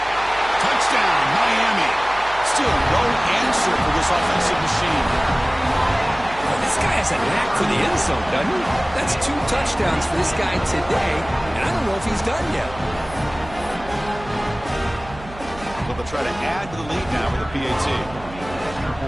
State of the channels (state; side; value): noise; right; hum, 16 dB below the sound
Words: Touchdown, Miami. Still no answer for this offensive machine. Well, this guy has a knack for the end zone, doesn't he? That's 2 touchdowns for this guy today, and I don't know if he's done yet. But they'll try to add to the lead now with a PAT.